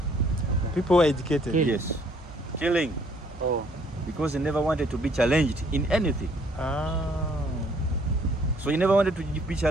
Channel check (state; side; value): normal; both; correlation 0.63